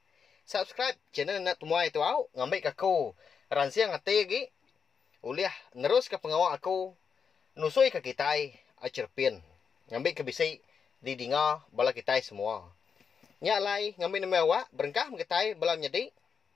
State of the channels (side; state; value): right; quieter; 6.3 dB